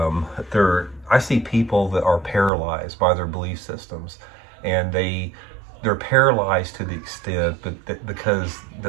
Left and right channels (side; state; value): left; drops out; at 2.5 s